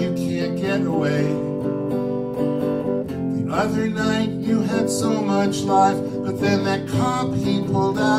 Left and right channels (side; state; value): both; identical; correlation 1.00